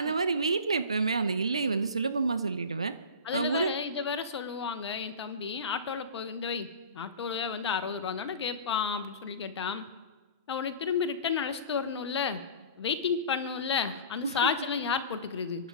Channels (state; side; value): inverted; both; correlation -0.35